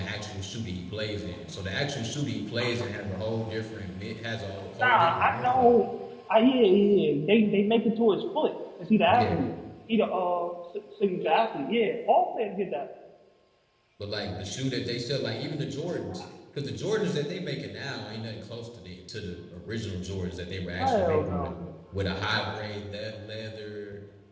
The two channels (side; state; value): both; identical; correlation 1.00